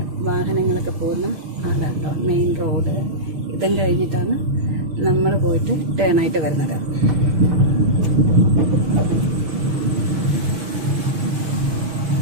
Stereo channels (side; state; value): left; late; 6.4 ms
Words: വാഹനങ്ങളൊക്കെ പോകുന്ന ആളാട്ടോ മെയിൻ റോഡ്. ഇതും കഴിഞ്ഞിട്ടാണ് നമ്മൾ പോയിട്ട് ടേണായിട്ട് വരുന്നത്.